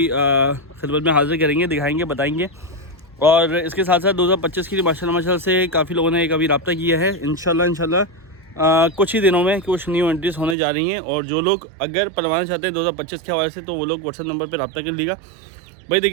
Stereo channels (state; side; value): drops out; left; at 10.6 s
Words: खिदमत में हाज़िर करेंगे, दिखाएँगे, बताएँगे। और इसके साथ साथ 2025 की माशाल्लाह से काफ़ी लोगों ने एक अभी रब्ता किया है। इंशाल्लाह कुछ ही दिनों में कुछ न्यू एंट्रीज होने जा रही हैं। और जो लोग अगर पलवाना चाहते हैं 2025 के हवाले से तो वो लोग व्हाट्सएप नंबर पर रब्ता कर लीजिएगा। भाई